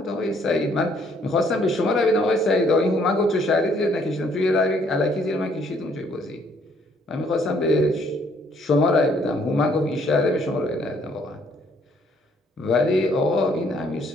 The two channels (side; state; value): both; normal; correlation 0.65